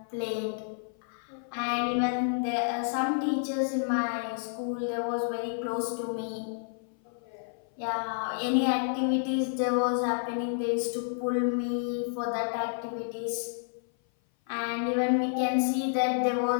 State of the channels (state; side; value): silent; right; 56 dB below the other